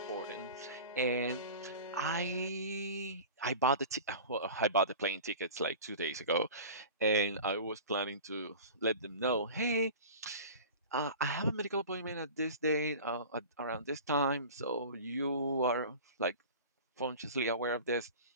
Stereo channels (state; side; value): inverted; both; correlation -0.36